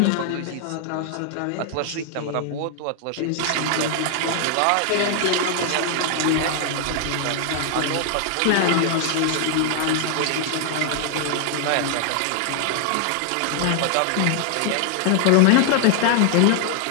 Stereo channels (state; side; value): different; both; correlation 0.00